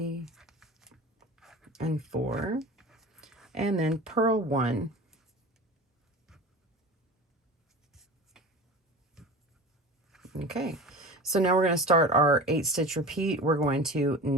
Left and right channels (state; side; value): normal; both; correlation 0.34